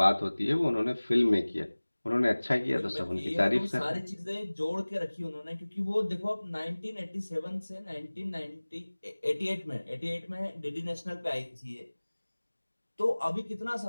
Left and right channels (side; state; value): both; inverted; correlation -1.00